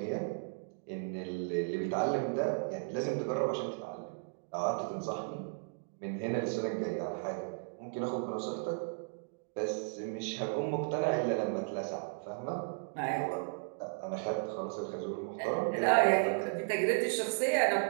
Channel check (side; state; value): left; silent; digital silence